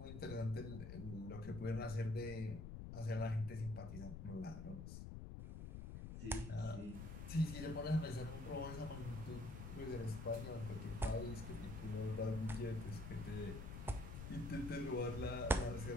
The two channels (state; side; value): noise; left; rumble, 7 dB below the sound